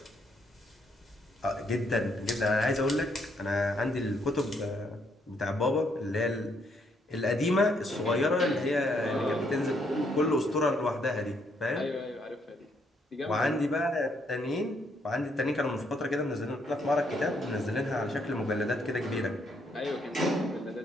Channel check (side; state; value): both; normal; correlation 0.72